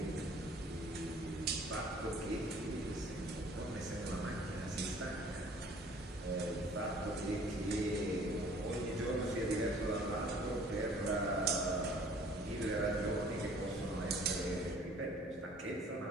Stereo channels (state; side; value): normal; both; correlation 0.54